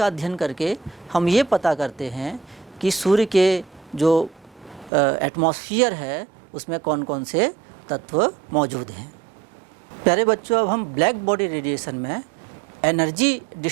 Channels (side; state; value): left; drops out; at 4.9 s